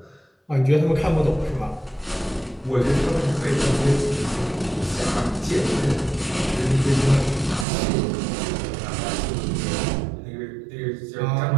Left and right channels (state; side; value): drops out; left; at 7.7 s